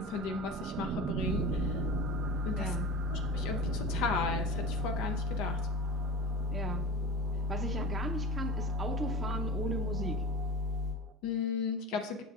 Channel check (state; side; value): normal; both; correlation 0.32